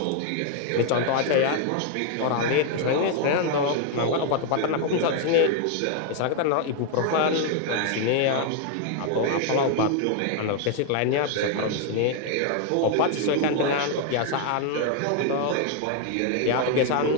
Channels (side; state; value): both; different; correlation 0.00